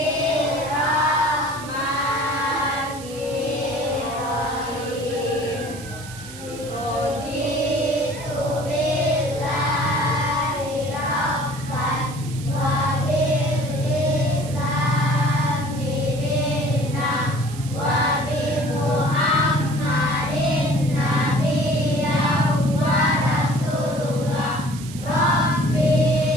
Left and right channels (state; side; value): noise; right; hiss, 16 dB below the sound